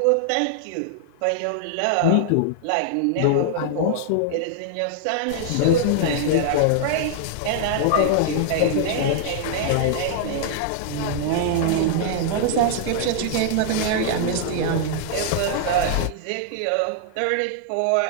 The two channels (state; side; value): different; both; correlation -0.01